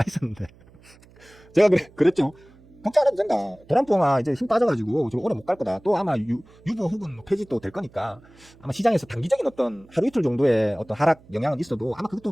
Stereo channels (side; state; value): right; noise; hum, 26 dB below the sound